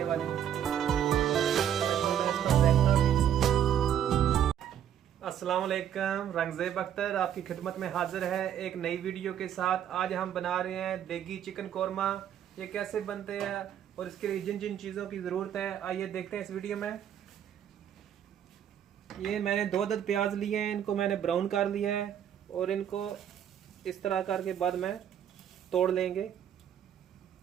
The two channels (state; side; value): quieter; left; 9.8 dB